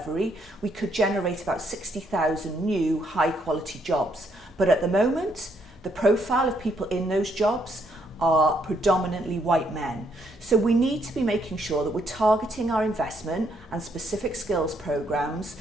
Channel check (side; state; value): both; normal; correlation 0.72